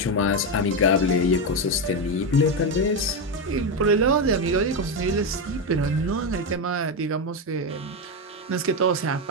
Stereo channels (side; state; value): both; normal; correlation 0.10